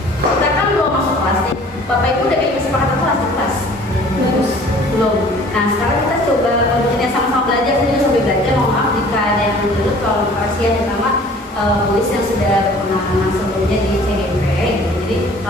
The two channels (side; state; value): both; normal; correlation 0.50